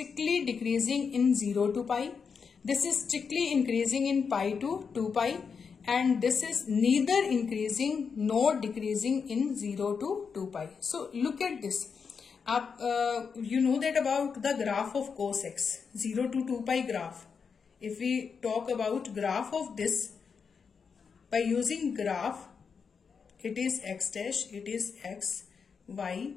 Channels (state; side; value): quieter; right; 5.9 dB